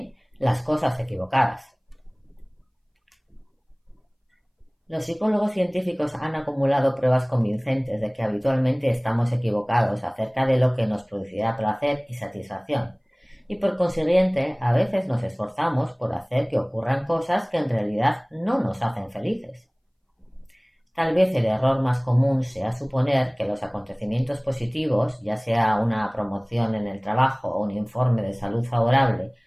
las cosas equivocadas. Los psicólogos científicos han acumulado pruebas convincentes de que habitualmente estamos equivocados acerca de lo que nos producirá placer y satisfacción, y por consiguiente a veces nos esforzamos por hacer que ocurran cosas que en realidad no nos hacen felices. Tal vez el error más común sea suponer que los acontecimientos positivos, ya sea una promoción en el trabajo o un informe de salud favorable,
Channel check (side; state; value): both; identical; correlation 1.00